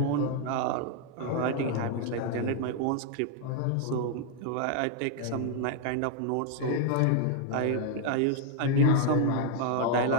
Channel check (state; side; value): different; both; correlation 0.00